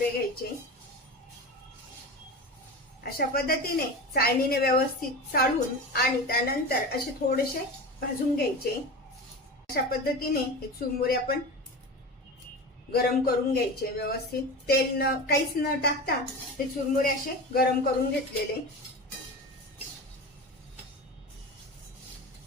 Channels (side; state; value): both; normal; correlation 0.28